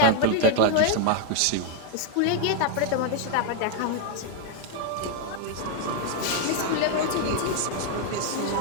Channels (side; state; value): both; different; correlation 0.00